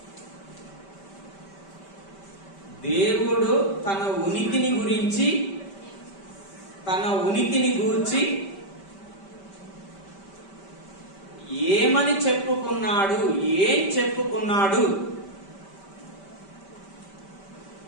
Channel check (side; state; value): right; late; 5.1 ms